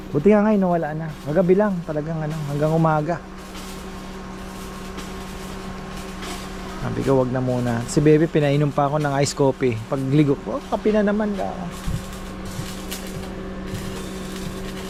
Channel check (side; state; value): both; identical; correlation 1.00